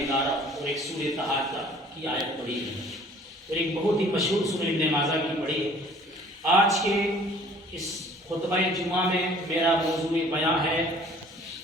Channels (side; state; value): both; normal; correlation 0.53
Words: 11 اور ایک سورہ تحاقہ کی آیت پڑھی ہے اور ایک بہت ہی مشہور سورہ ابن ماجہ کی پڑھی ہے۔ آج کے اس خطبہ جمعہ میں میرا موضوع بیان ہے